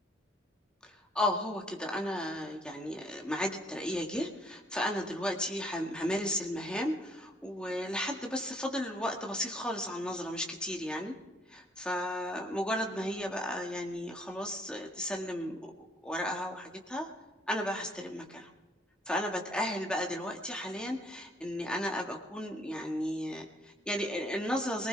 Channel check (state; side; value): normal; both; correlation 0.64